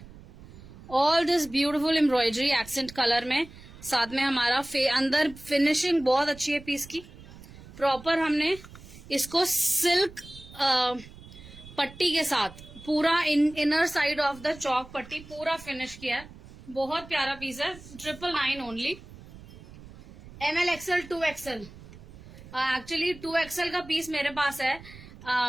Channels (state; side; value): noise; right; rumble, 18 dB below the sound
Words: all this beautiful embroidery accent colour में, साथ में हमारा अंदर फिनिशिंग बहुत अच्छी है पीस की, प्रॉपर हमने इसको सिल्क पट्टी के साथ पूरा इनर साइड ऑफ द चौक पट्टी पूरा फिनिश किया है, बहुत प्यारा पीस है, 999 only, ML XL 2XL, actually 2XL का पीस मेरे पास है,